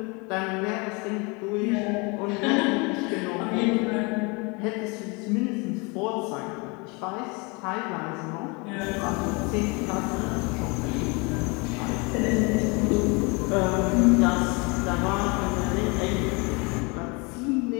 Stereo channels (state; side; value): quieter; right; 29.2 dB